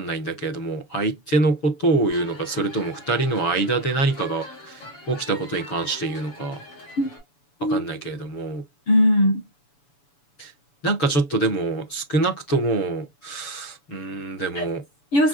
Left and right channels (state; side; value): late; right; 7.0 ms